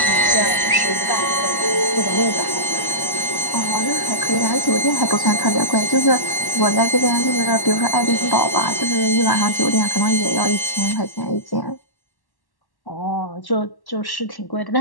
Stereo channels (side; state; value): right; late; 1.1 ms